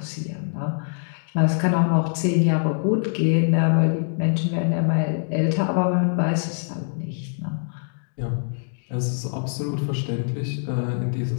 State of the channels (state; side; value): silent; right; digital silence